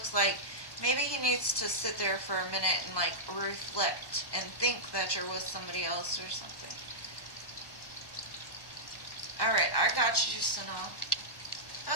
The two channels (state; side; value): late; right; 1.1 ms